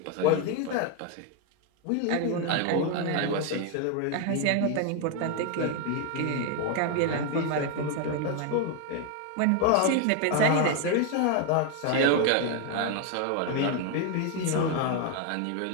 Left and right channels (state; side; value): different; both; correlation 0.01